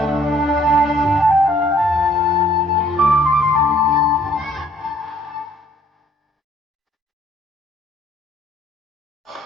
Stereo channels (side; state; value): both; normal; correlation 0.62